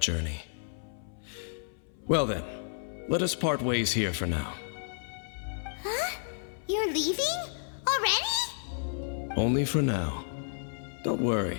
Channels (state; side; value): silent; right; 57 dB below the other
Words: journey. Well then, let us part ways here for now. Huh? You're leaving? Already? Only for now. Don't